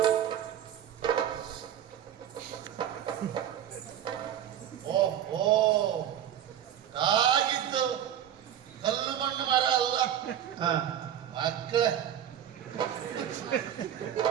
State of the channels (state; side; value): quieter; left; 10.3 dB